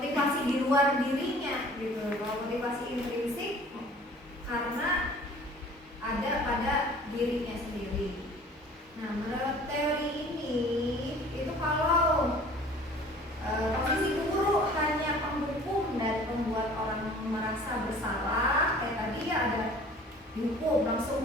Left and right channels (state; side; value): normal; both; correlation 0.48